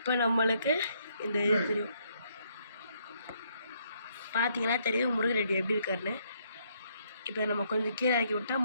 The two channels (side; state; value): both; inverted; correlation -0.71